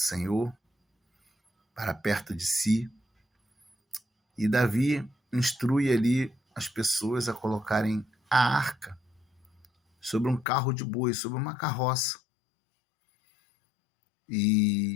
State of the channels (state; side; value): drops out; right; at 10.5 s